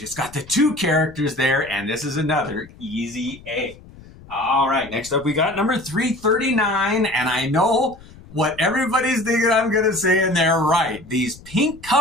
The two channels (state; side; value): noise; left; rumble, 21 dB below the sound